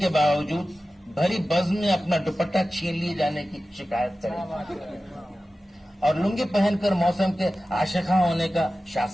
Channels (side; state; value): both; normal; correlation 0.95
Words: باوجود بھری بزم میں اپنا دوپٹہ چھین لیے جانے کی شکایت کرے اور لنگی پہن کر موسم کے عاشقاں ہونے کا